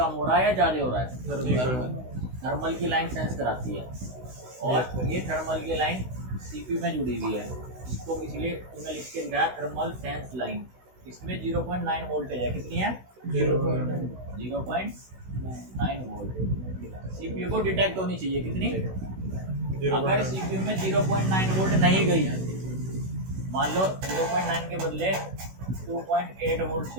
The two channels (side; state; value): left; late; 16 ms